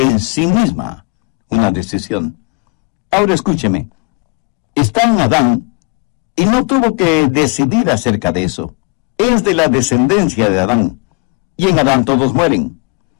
sí misma una decisión. Ahora escúcheme, está en Adán y no tuvo que decidir acerca de eso. Es de la descendencia de Adán, y en Adán todos mueren.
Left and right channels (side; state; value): right; quieter; 32.1 dB